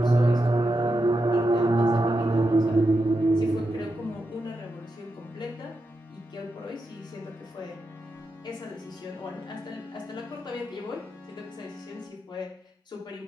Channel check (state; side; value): normal; both; correlation 0.87